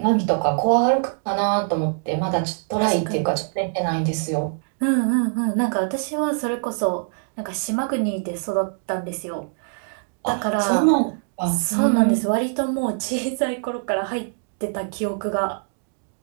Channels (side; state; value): left; silent; digital silence